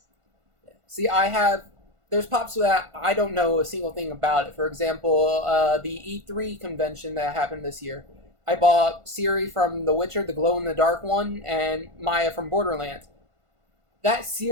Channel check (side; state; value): left; late; 1.5 ms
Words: See, there's pops that I don't know a single thing about it. For example, the E3 convention that happened this year, I bought Ciri from The Witcher, the glow-in-the-dark one, and Maya from Borderlands. That